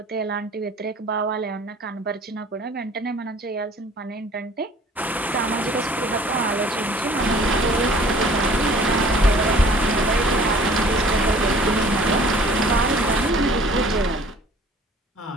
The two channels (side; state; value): both; normal; correlation 0.52